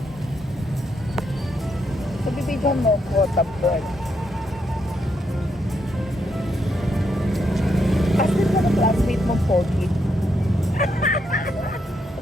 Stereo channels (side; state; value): both; normal; correlation 0.78